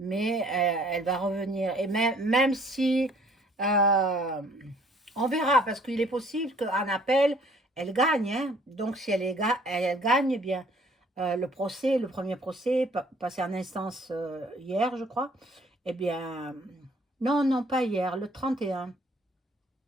elle va revenir. Et même si, euh, on verra, parce qu'il est possible qu'en appel, elle gagne, hein. Donc si elle gagne, eh bien, le premier procès, passé en instance hier, je crois, eh bien, non, non, pas hier, le 31,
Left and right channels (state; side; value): normal; both; correlation 0.58